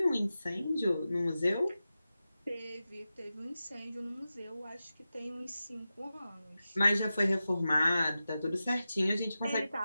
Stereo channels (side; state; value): both; inverted; correlation -0.93